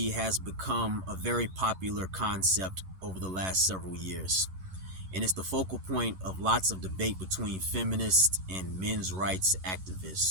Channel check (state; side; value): late; left; 11 ms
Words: has become a very popular concept over the last several years, and it's the focal point of lots of debate between feminists and men's rights